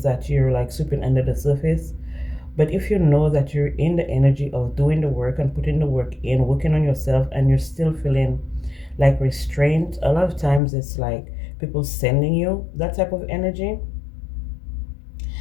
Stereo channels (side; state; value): right; drops out; at 10.6 s